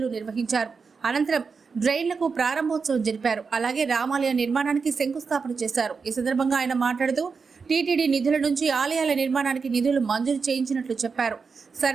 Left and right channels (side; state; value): left; quieter; 5.2 dB